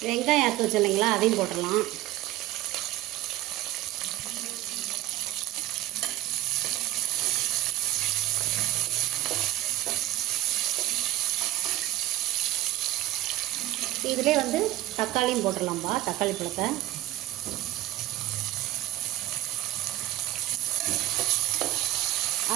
வெங்காயம் அறுத்து வச்சு இல்லைங்களா, அதையும் போட்டுடலாம். இதிலே வந்து தக்காளியும் போட்டுடலாம்பா, தக்காளி பழத்தை.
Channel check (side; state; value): left; quieter; 15.5 dB